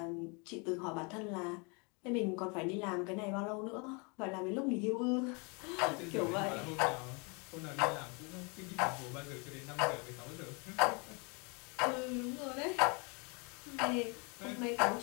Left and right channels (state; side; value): quieter; right; 32.2 dB